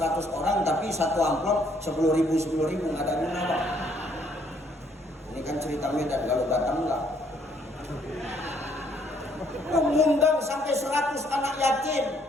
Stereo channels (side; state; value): both; normal; correlation 0.66